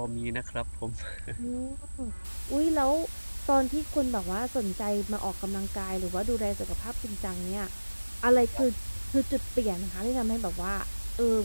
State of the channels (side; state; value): both; inverted; correlation -1.00